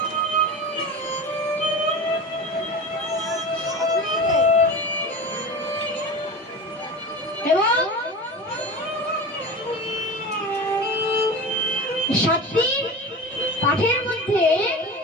এবং 7 দিন পাঠের মধ্যে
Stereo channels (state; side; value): normal; both; correlation 0.30